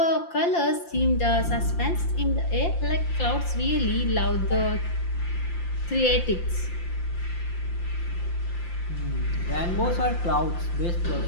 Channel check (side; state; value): right; late; 5.8 ms